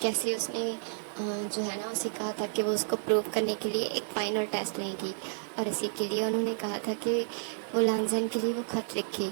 कैसे उसने जो है ना उसे कहा था कि वो उसको प्रूव करने के लिए एक फाइनल टेस्ट लेंगी और इसी के लिए उन्होंने कहा था कि वो लांजन के लिए वो खत लिखे।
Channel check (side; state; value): left; silent; digital silence